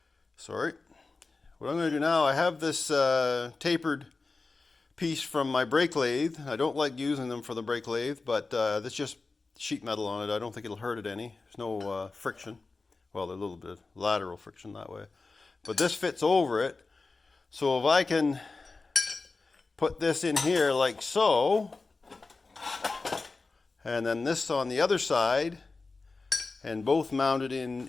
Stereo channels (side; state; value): right; quieter; 3.8 dB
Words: I have this tapered piece from my brake lathe. I don't like using them for the brake lathe, but that's just sheet metal on it. I don't think it'll hurt it any. There's no friction. Well, there's a little bit of lateral friction that way. But this fits over it. So if I can put this in here like so, and then this on the other side, and both mounted